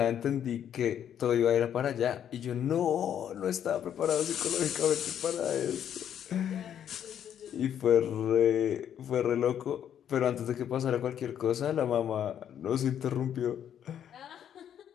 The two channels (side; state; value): right; quieter; 9.5 dB